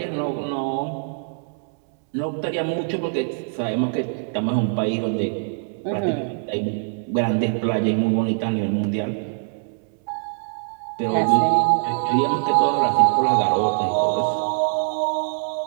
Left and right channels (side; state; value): left; silent; 63 dB below the other